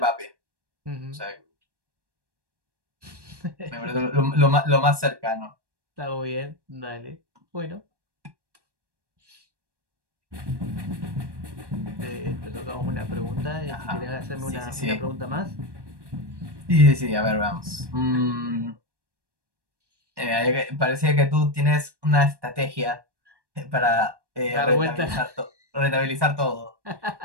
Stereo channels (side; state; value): left; late; 1.1 ms